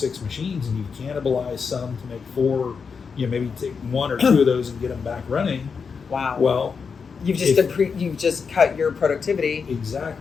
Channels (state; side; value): quieter; right; 5.7 dB